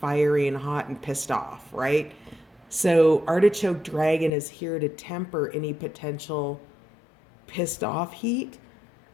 and hot and pissed off, right? So artichoke dragon is here to temper any potential pissed off heat.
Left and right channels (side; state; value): right; drops out; at 4.3 s